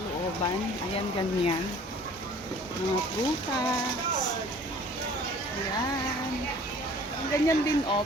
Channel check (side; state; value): both; normal; correlation 0.50